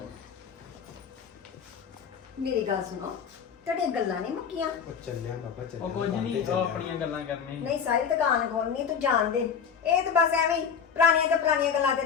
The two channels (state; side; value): quieter; right; 7.0 dB